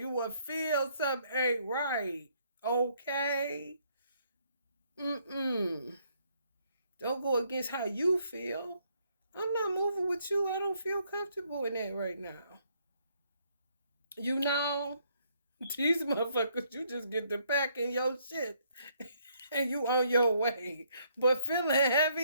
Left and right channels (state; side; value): inverted; both; correlation -0.70